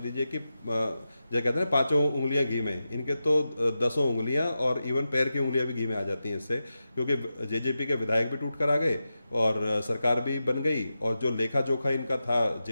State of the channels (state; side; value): inverted; both; correlation -0.91